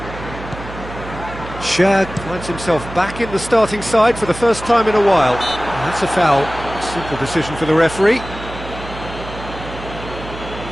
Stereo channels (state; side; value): noise; right; hum, 12 dB below the sound